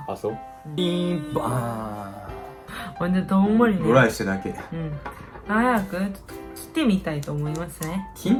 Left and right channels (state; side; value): identical; both; correlation 1.00